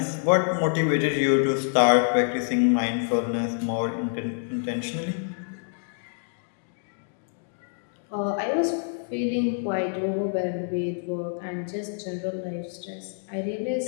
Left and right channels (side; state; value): right; silent; digital silence